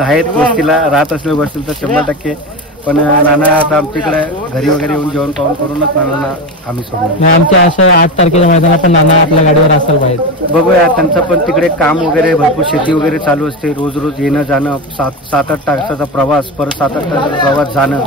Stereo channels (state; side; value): normal; both; correlation 0.20